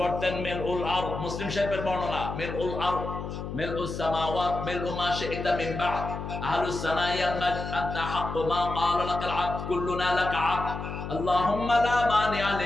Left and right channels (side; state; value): left; noise; hum, 7 dB below the sound